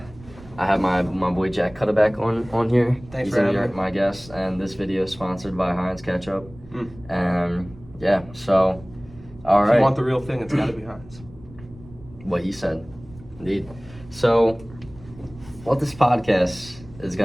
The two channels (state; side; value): noise; right; rumble, 20 dB below the sound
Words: have my boy Jack Cutterback on here. Thanks He's for gonna having be me. my guest, and this video is sponsored by Heinz Ketchup. Mm. And yeah, so all If right, you want the real thing, it's got to be Heinz. what he said, indeed. So what this podcast is